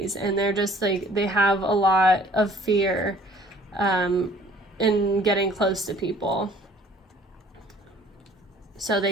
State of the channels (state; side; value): normal; both; correlation 0.54